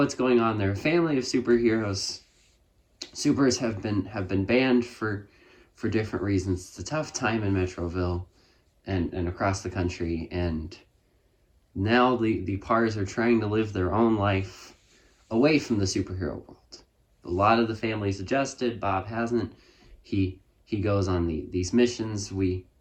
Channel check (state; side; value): identical; both; correlation 1.00